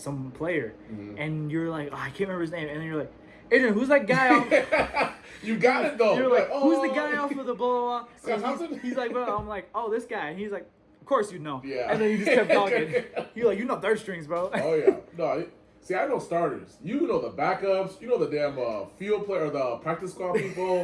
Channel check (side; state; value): both; identical; correlation 1.00